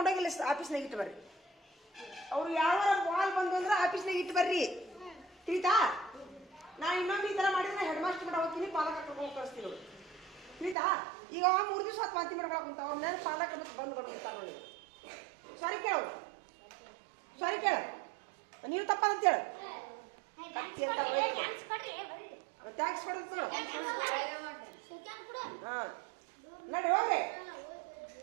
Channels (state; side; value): drops out; left; at 10.8 s